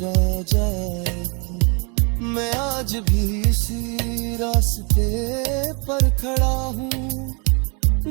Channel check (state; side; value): quieter; left; 33.4 dB